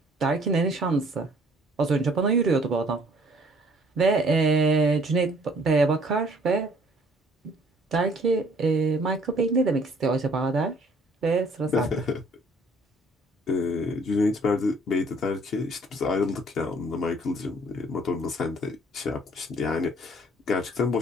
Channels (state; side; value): normal; both; correlation 0.58